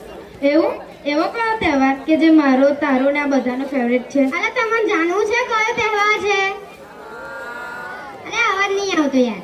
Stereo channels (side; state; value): both; identical; correlation 1.00